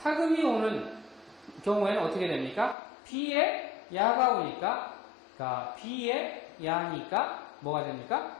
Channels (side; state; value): right; drops out; at 2.8 s